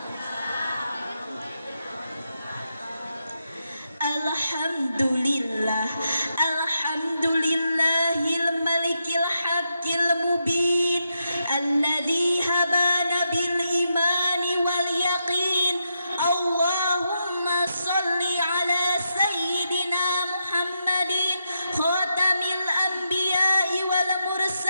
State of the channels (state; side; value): inverted; both; correlation -0.83